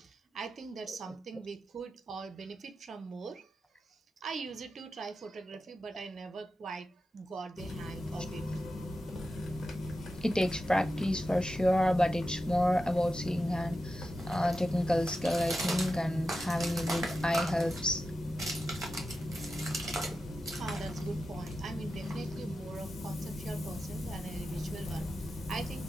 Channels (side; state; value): both; normal; correlation 0.91